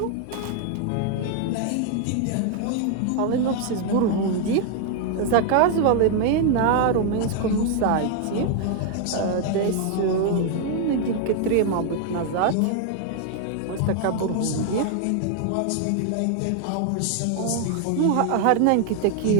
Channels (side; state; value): both; different; correlation 0.00